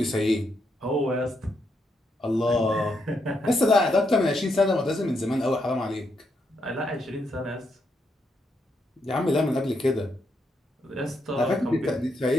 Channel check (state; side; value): normal; both; correlation 0.79